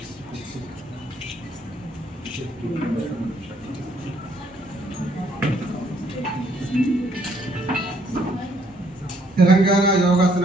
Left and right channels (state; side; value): normal; both; correlation 0.67